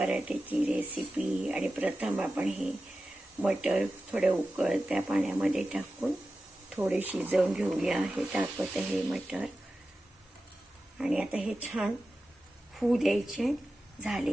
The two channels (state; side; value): normal; both; correlation 0.93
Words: रेसिपी. आणि प्रथम आपण हे मटर थोडे उकळत्या पाण्यामध्ये टाकून थोडे शिजवून घेऊया. हे टाकत आहे मटर. आणि आता हे छान होऊ द्यायचे.